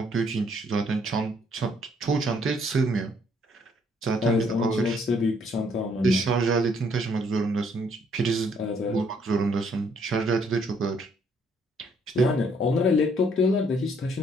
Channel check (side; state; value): both; normal; correlation 0.67